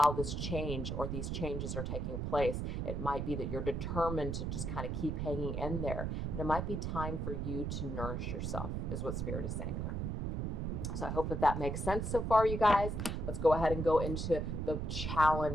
this change or these changes are taking place, it might be that you're determined to just kind of keep hanging in there. But it might be time for you to nourish yourself, is what Spirit is saying there. So I hope that makes sense so far, you guys. Let's go ahead and go into the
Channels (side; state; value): right; noise; rumble, 2 dB below the sound